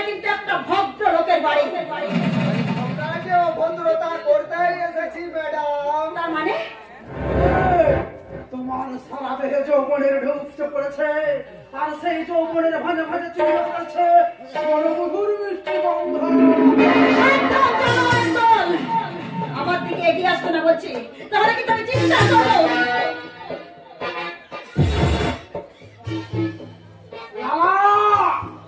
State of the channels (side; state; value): both; identical; correlation 1.00